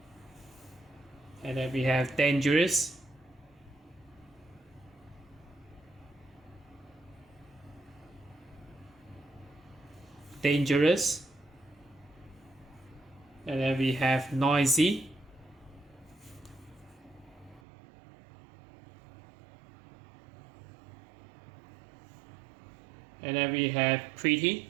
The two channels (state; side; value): drops out; left; at 17.6 s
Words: And then we have dangerous. Dangerous. And then we have noisy. And then we have pretty.